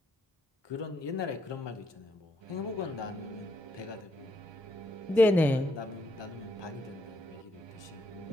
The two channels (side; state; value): both; normal; correlation 0.76